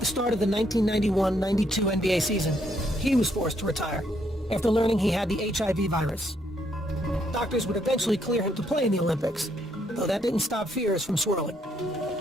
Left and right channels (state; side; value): normal; both; correlation 0.73